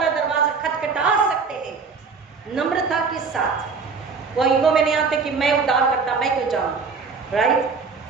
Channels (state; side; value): quieter; left; 4.9 dB